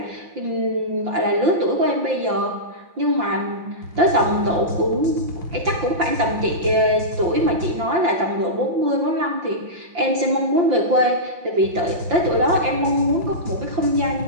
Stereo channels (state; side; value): late; left; 5.8 ms